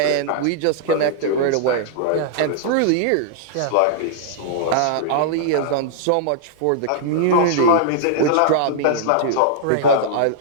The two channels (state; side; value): different; both; correlation -0.02